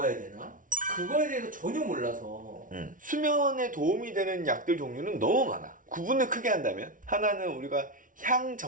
되나? 그거에 대해서 전혀 몰라서. 수면에 도움이 되는 약들 종류는 너무 많아. 구분을 크게 한다면 하나는 우리가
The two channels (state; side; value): late; left; 0.38 ms